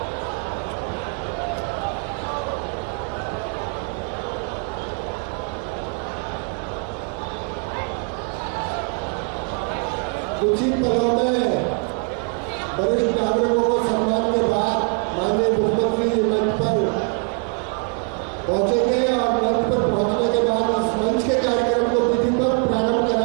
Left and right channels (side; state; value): left; quieter; 39.7 dB